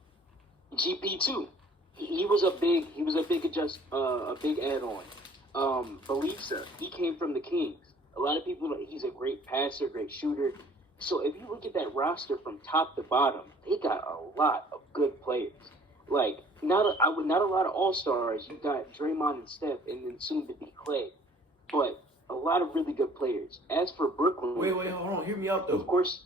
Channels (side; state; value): both; normal; correlation 0.54